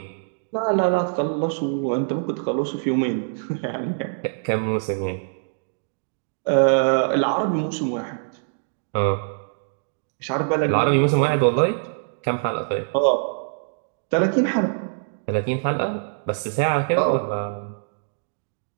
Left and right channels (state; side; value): silent; left; digital silence